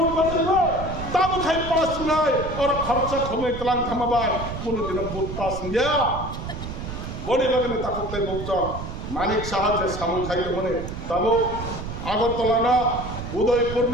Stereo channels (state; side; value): noise; right; rumble, 7 dB below the sound